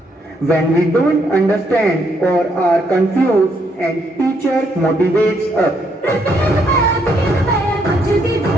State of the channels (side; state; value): both; normal; correlation 0.73